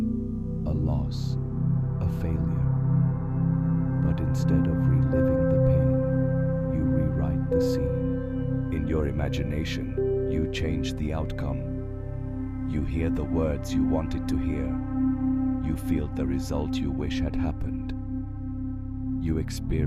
a loss, a failure. But instead of reliving the pain, you rewrite the scene. In your imagination, you change the outcome. You hear the words you wanted to hear. You feel the result you wish had happened. You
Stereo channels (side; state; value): both; identical; correlation 1.00